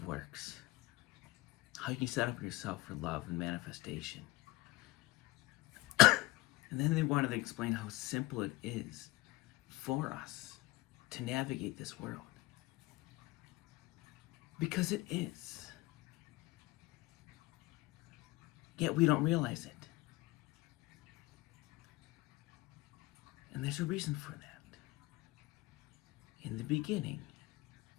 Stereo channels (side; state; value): right; quieter; 19.9 dB